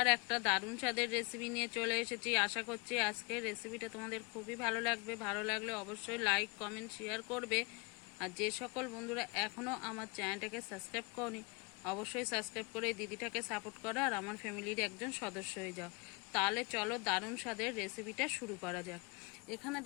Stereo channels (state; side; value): quieter; right; 29.4 dB